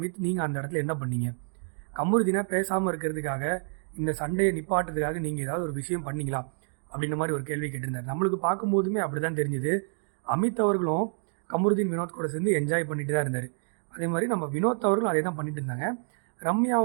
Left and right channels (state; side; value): silent; left; 59 dB below the other